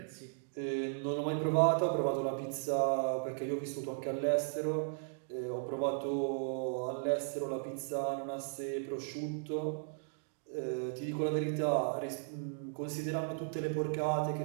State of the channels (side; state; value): left; silent; digital silence